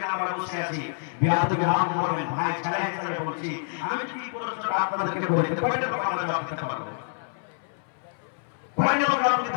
আমরা বসে আছি, বিয়াদকে মাফ করবেন ভাই, ছাড়া হিসেবে বলছি, আমি কি প্রশ্ন আপনাদেরকে বলি, কয়টা লোক আমরা জবাব দিতে পারবো? কয়টা লোক জবাব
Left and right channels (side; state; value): right; silent; 60 dB below the other